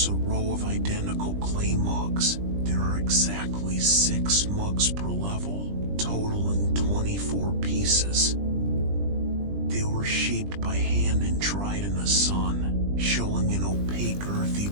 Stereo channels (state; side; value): late; left; 20 ms